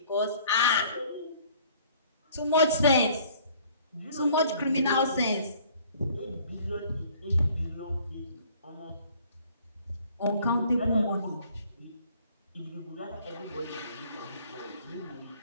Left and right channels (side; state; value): both; inverted; correlation -0.56